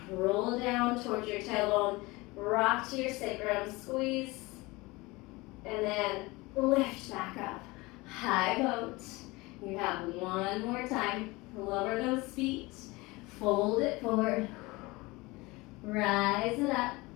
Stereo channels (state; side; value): quieter; right; 22.9 dB